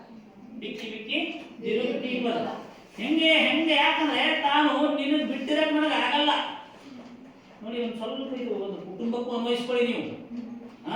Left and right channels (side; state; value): both; identical; correlation 1.00